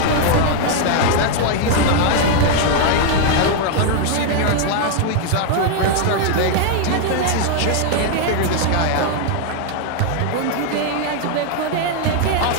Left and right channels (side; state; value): both; different; correlation 0.00